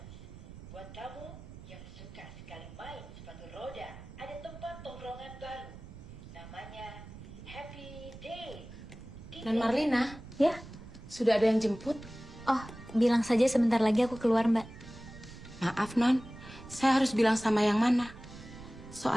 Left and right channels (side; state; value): right; noise; rumble, 15 dB below the sound